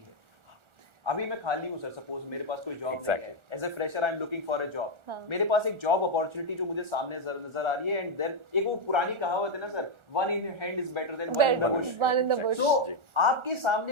अभी मैं खाली हूँ सर, सपोज मेरे पास कोई जॉब नहीं है, as a fresher I am looking for a job, मेरे पास एक जॉब अपॉर्चुनिटी जो मुझे सामने नजर आ रही है, एंड देन एक वो पुरानी कहावत है ना sir, one in hand is better than one in the Bush. तो आपके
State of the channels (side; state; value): left; late; 1.4 ms